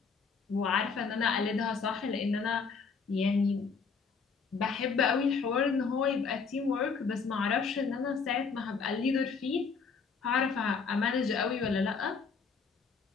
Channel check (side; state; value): right; quieter; 5.3 dB